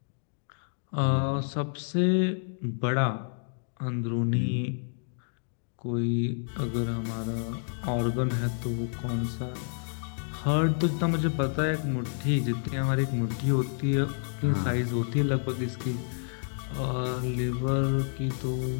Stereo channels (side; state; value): right; silent; digital silence